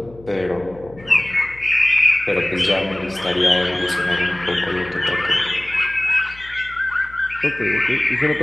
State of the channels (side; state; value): left; noise; hum, 22 dB below the sound